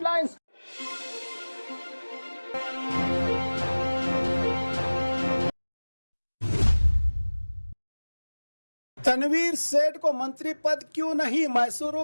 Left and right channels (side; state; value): both; inverted; correlation -1.00